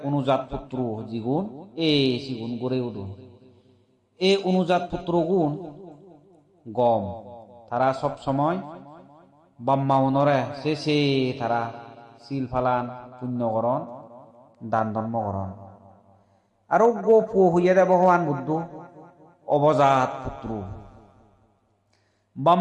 অনুজাত পুত্র জিগুন এই সিগুন গড়ে উঠুন এই অনুজাত পুত্র গুণ গম তারা সব সময় বাম্মাউনরে সে তারা শিল ফালান পুণ্যকরণ দান ধর্মকরণ আরো গো পু হইয়া দে ভগবান বুদ্ধ অবজাত পুত্র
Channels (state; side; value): identical; both; correlation 1.00